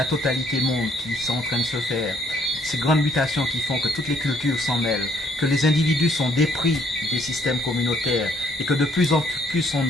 totalité monde qui sont en train de se faire, ces grandes mutations qui font que toutes les cultures s'en mêlent, que les individus sont dépris des systèmes communautaires et que de plus en plus on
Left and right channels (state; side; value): normal; both; correlation 0.66